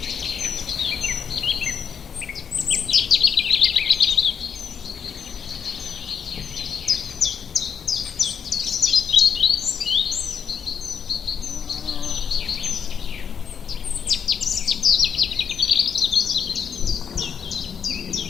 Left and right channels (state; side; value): quieter; right; 7.1 dB